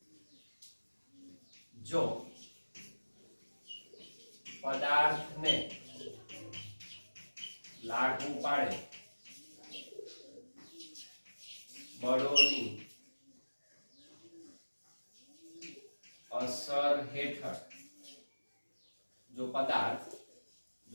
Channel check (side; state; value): both; inverted; correlation -1.00